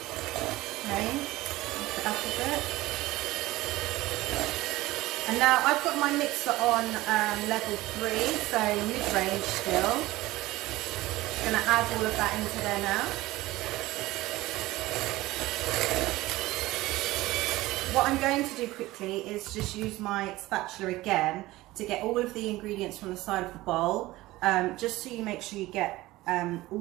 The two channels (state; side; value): quieter; left; 18.2 dB